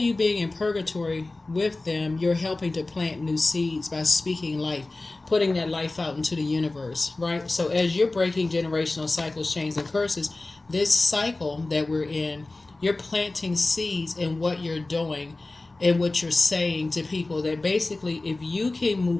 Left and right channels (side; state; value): right; quieter; 3.1 dB